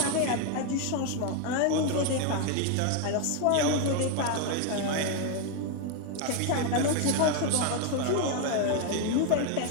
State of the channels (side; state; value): both; different; correlation 0.01